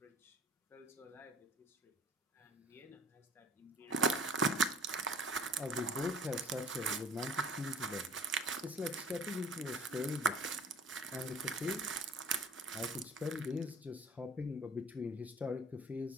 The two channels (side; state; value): both; normal; correlation 0.47